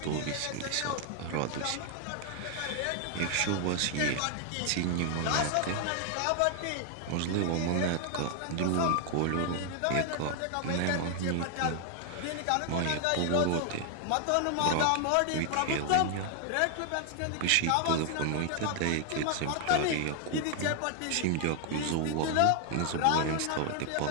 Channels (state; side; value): different; both; correlation 0.00